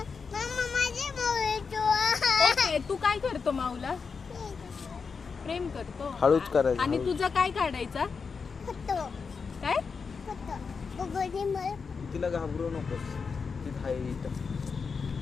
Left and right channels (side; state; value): right; quieter; 5.3 dB